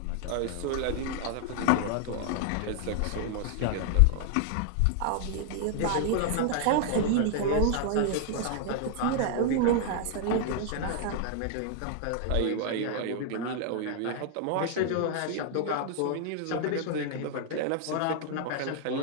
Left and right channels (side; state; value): both; different; correlation 0.00